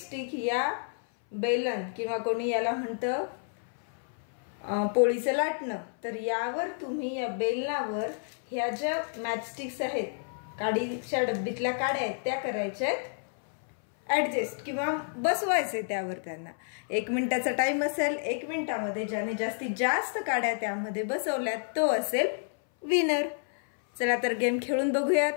या बेलन किंवा कोणी याला म्हणतं पोळीचं लाटणं, तर यावर तुम्ही या बेलनावर ह्या ज्या मॅचस्टिक्स आहेत, काडीच्या डब्बीतल्या काड्या आहेत त्या करायच्या ऍडजस्ट किंवा बसवायचे त्यावर। त्यांना 1 मिनिटाचा टाइम असेल। 1 मिनिटामध्ये ज्याने जास्तीत जास्त काड्या त्यामध्ये बसवल्यात तो असेल विनर। चला तर गेम खेळून बघूयात।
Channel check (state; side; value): silent; right; 57 dB below the other